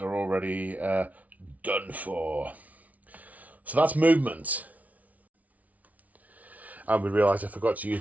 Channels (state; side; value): late; left; 0.071 ms